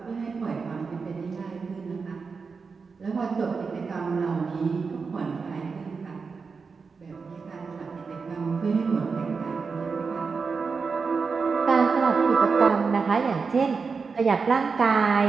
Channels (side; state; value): left; quieter; 5.0 dB